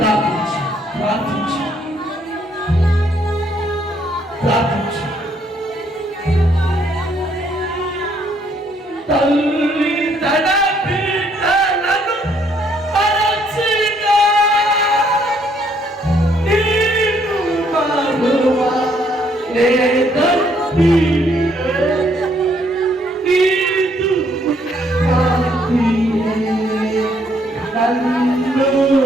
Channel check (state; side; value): normal; both; correlation 0.68